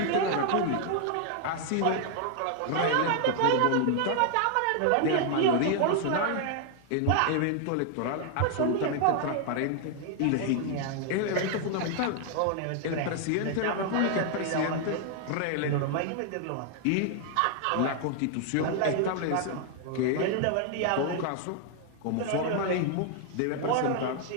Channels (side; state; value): both; different; correlation 0.00